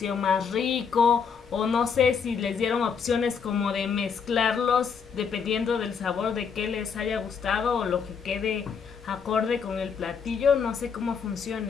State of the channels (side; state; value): right; quieter; 6.3 dB